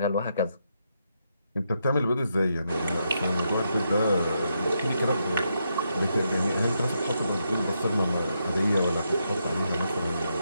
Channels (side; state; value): both; inverted; correlation -0.81